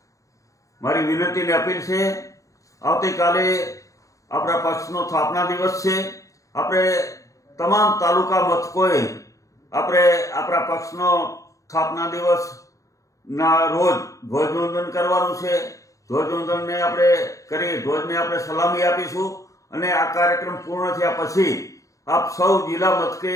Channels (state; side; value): late; right; 0.16 ms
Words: मारी विनती ने अपील से आवती काले अपना पक्षनो स्थापना दिवस से अपने तमाम तालुका मथकोए अपने अपना पक्षनो स्थापना दिवस ना रोज ध्वजवंदन करवानुं छे। ध्वजवंदन ने अपने करी ध्वज ने अपने सलामी आपीशुं अने आ कार्यक्रम पूर्ण थया पछी आप सौ जिला मथके